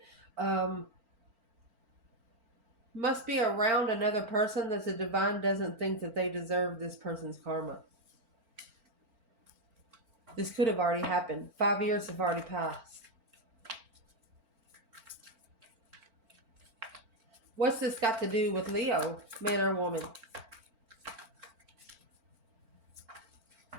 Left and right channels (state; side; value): late; left; 4.4 ms